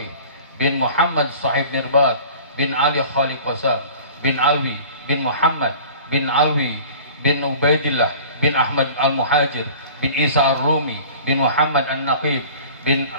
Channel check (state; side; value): inverted; both; correlation -0.43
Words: bin Muhammad Sahib Mirbad bin Ali Khaliq Qasam bin Alwi bin Muhammad bin Alwi bin Ubaidillah bin Ahmad Al-Muhajir bin Isa Ar-Rumi bin Muhammad An-Naqib bin